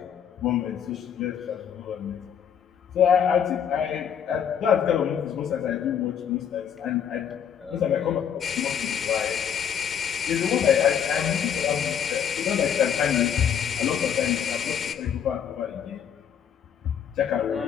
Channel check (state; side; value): quieter; right; 8.4 dB